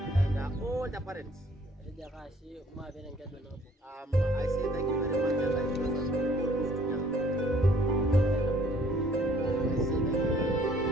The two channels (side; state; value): both; normal; correlation 0.59